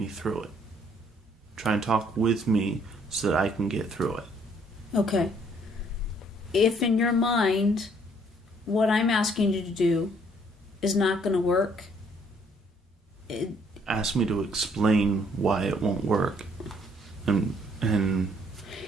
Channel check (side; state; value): both; normal; correlation 0.64